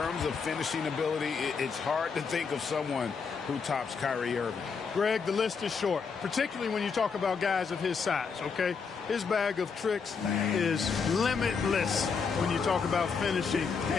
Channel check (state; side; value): quieter; right; 5.6 dB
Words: of finishing ability, it's hard to think of someone who tops Kyrie Irving. Greg, the list is short, particularly when you talk about guys of his size, okay? His bag of tricks is limitless when you talk about finishing